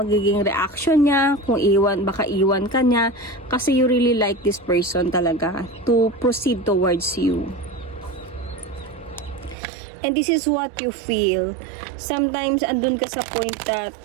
magiging reaction niya, kung baka iwan ka niya, kasi you really like this person talaga to proceed towards you. And this is what you feel. Sometimes andun ka sa point that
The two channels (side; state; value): left; drops out; at 9.6 s